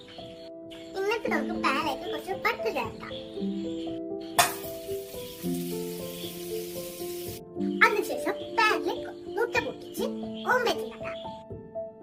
എന്നിട്ട് നമുക്ക് പാനിലേക്ക് കുറച്ച് ബട്ടർ ചേർക്കാം. അതിനുശേഷം പാനിലേക്ക് മുട്ട പൊട്ടിച്ച് ഓംലെറ്റ് ഉണ്ടാക്കാം.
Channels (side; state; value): both; identical; correlation 1.00